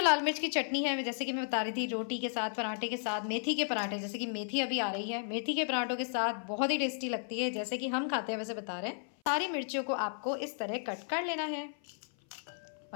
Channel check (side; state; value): right; silent; 55 dB below the other